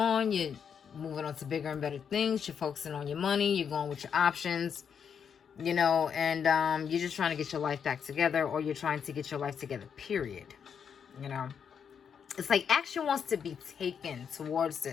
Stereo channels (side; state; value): right; quieter; 7.3 dB